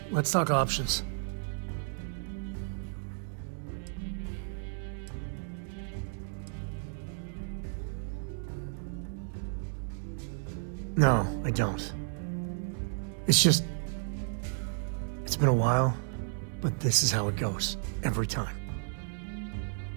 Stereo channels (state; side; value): silent; left; digital silence